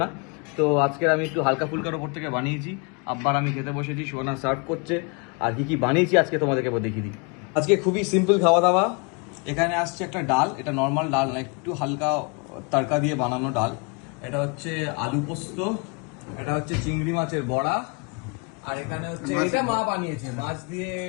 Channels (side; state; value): right; quieter; 32.7 dB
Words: না। তো আজকের আমি একটু হালকা ফুলকার ওপর থেকে বানিয়েছি। আব্বার আমি খেতে বসেছি, সোনা সার্ভ করছে। আর কি কি বানিয়েছি আজকে তোমাদেরকে দেখিয়ে দিই। আজকে খুবই সিম্পল খাওয়া দাওয়া। এখানে আসছে একটা ডাল, এটা নর্মাল ডাল না, একটু হালকা তড়কা দিয়ে বানানো ডাল। এটা হচ্ছে আলু পোস্ত, এটা হচ্ছে চিংড়ি মাছের বড়া, আর এখানে হচ্ছে এটা মা বানিয়েছে মাছ দিয়ে